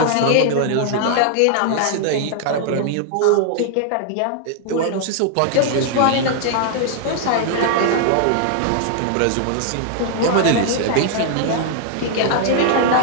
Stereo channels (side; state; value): both; different; correlation 0.00